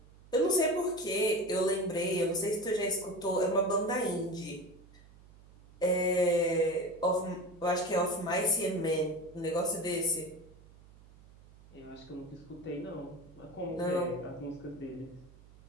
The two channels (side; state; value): right; noise; hum, 23 dB below the sound